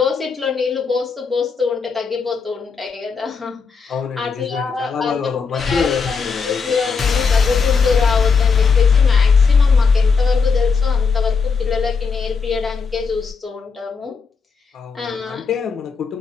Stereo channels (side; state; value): right; quieter; 5.3 dB